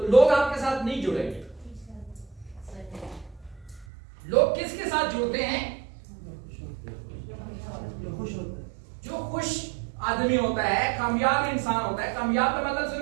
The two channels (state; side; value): drops out; left; at 3.9 s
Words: लोग आपके साथ नहीं जुड़ेंगे। लोग किसके साथ जुड़ते हैं? जो खुश आदमी होता है, कामयाब इंसान होता है। कामयाब का मतलब